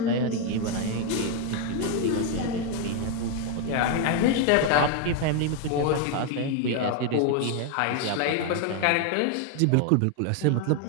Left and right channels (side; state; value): both; different; correlation 0.01